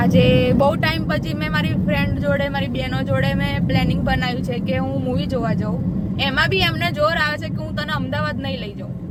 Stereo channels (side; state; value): both; identical; correlation 1.00